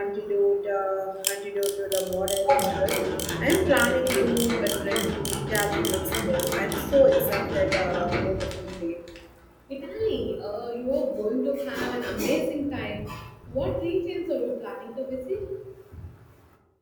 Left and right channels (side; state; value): both; identical; correlation 1.00